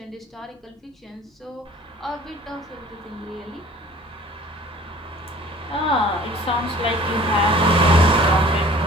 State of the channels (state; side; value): normal; both; correlation 0.49